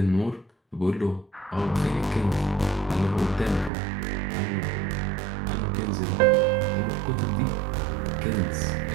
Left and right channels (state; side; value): drops out; left; at 3.7 s